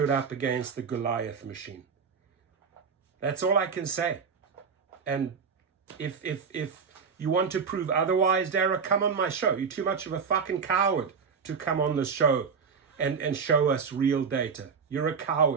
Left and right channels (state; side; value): quieter; left; 5.9 dB